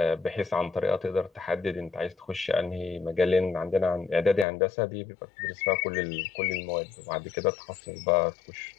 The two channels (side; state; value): right; drops out; at 4.5 s